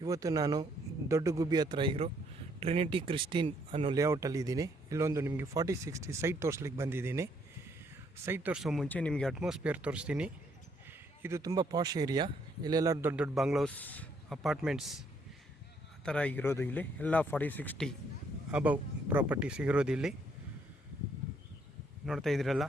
ಇವತ್ತು ನಾನು ದೊಡ್ಡ ಗುಬ್ಬಿ ಹತ್ರ ಇರೋ ಟ್ರಿನಿಟಿ ಕ್ರಿಸ್ಟಿನ್ ಅನ್ನೋ ಲೇಔಟಲ್ಲಿ ಇದ್ದೀನಿ. ಇಲ್ಲೊಂದು ನಿಮಗೆ 4060 ಸೈಟ್ ತೋರಿಸ್ಲಿಕ್ಕೆ ಬಂದಿದ್ದೀನಿ. ಸೈಟ್ ತೋರಿಸೋ ಮುಂಚೆ ನಿಮಗೆ ಅಟ್ಮಾಸ್ಫಿಯರ್ ತೋರಿಸ್ತೀನಿ. ಇದು ತುಂಬ ಪಾಶ್ ಏರಿಯಾ. ಇಲ್ಲೆಲ್ಲ ದೊಡ್ಡ ದೊಡ್ಡ ಬಂಗ್ಲೋಸ್, ಅಪಾರ್ಟ್ಮೆಂಟ್ಸ್ ಆ ಥರ ಇರೋದು. ಇಲ್ಲಿ ಎಲ್ಲ 4060 ಅಬವ್ ಪ್ರಾಪರ್ಟೀಸ್ ಇರೋದು. ಇಲ್ಲಿ ನೋಡ್ತಾ ಇದ್ದೀರಲ್ಲ,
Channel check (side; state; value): both; normal; correlation 0.69